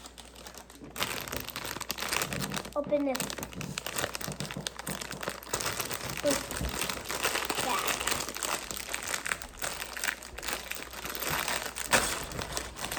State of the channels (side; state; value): both; identical; correlation 1.00